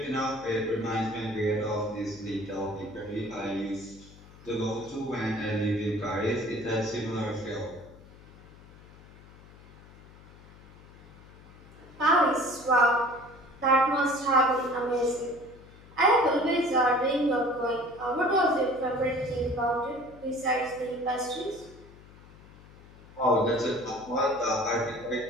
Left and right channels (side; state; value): left; noise; hum, 22 dB below the sound